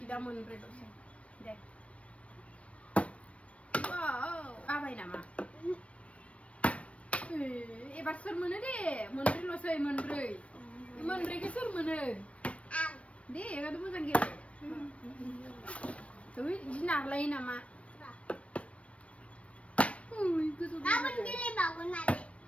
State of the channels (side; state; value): right; late; 0.063 ms